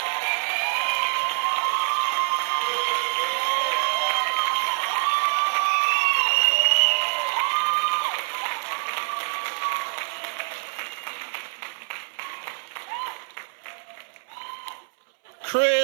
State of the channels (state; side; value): silent; left; 62 dB below the other